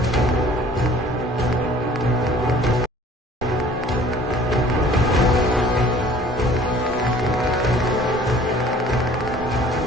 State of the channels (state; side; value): normal; both; correlation 0.52